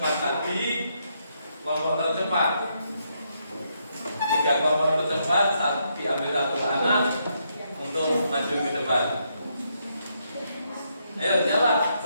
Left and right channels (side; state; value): both; inverted; correlation -0.77